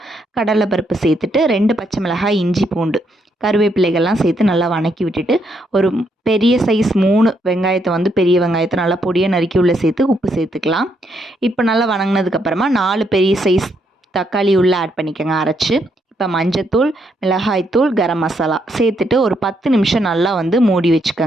கடலைப்பருப்பு சேர்த்துட்டு 2 பச்சை மிளகாய், இஞ்சி பூண்டு, கருவேப்பிலைகள்லாம் சேர்த்து நல்லா வணக்கி விட்டுட்டு ஒரு பெரிய சைஸ் 3 வெங்காயத்தை வந்து பெரிய வெங்காயத்தை நல்லா பொடியை நறுக்கி உள்ள சேர்த்து உப்பு சேர்த்துக்கலாம். இப்போ நல்லா வணங்கினதுக்கப்புறமா 4 பெரிய சைஸ் தக்காளி உள்ளே ஆட் பண்ணிக்கோங்க அரைச்சி. இப்போ மஞ்சத்தூள், மிளகாய்த்தூள், கரம் மசாலா சேர்த்துட்டு ஒரு 10 நிமிஷம் நல்லா வந்து மூடி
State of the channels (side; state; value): both; normal; correlation 0.76